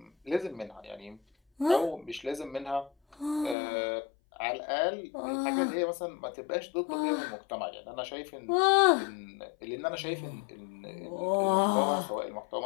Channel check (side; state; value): right; drops out; at 3.6 s